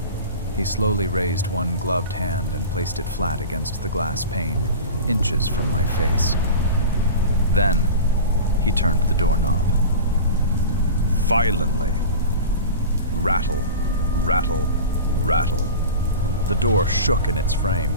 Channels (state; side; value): inverted; both; correlation -0.32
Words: He slowly raised one gloved hand and placed it flat against the glass pane, inches from my face. Then, he turned the doorknob. Violently. Rattle, rattle, rattle. The door shook in its frame.